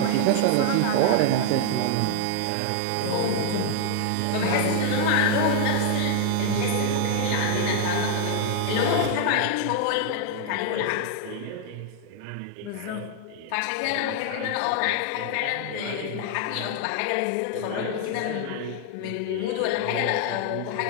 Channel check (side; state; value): both; different; correlation 0.00